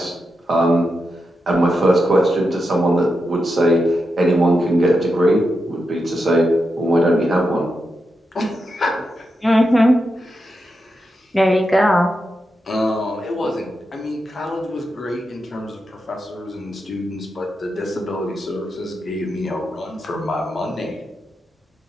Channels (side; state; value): both; normal; correlation 0.87